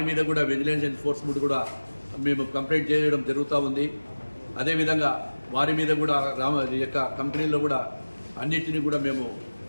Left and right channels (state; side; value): inverted; both; correlation -1.00